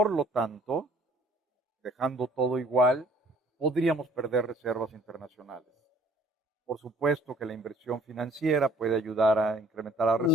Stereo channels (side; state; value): both; normal; correlation 0.56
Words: lo tanto, dejando todo igual, podríamos perder reservas internacionales. Por supuesto que la inversión financiera puede ayudar a incrementar las Ujú.